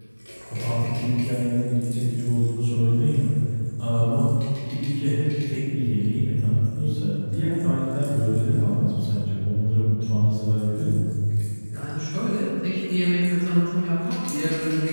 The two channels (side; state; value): both; inverted; correlation -1.00